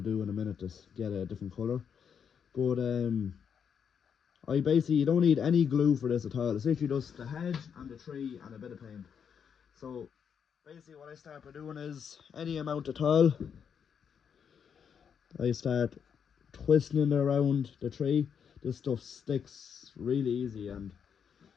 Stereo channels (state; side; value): quieter; right; 7.3 dB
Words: in a minute to get a different colour. But you don't need any glue for this at all. It's literally just the hedge and the tree and a bit of paint. So basically what I start by doing is any amount at all. I start twisting it around the tree. This stuff sticks really easy, and